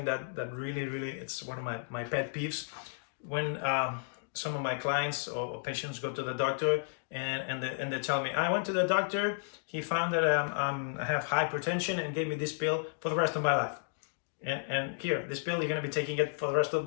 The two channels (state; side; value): silent; right; digital silence